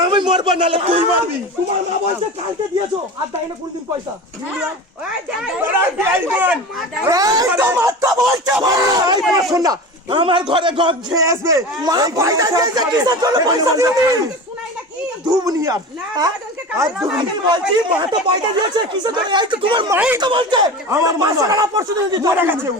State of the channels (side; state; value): both; normal; correlation 0.31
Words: আমি মরবো নালে তুই মরবি তোমার মা বলছে কালকে দিয়েছো আর দেয় না কোনদিন পয়সা আমার ঘরে গপ খেয়ে আসবে মা পয়সা দিয়েছে কিসের জন্য পয়সা দিয়েছে দুবনিয়ার আর দুবনি বলছি মা তো পয়সা দিয়েছে কিসের জন্য এই তো তোমার মাই তো বলছে আমার মা সারা পরশু দিন মরে গেছে ও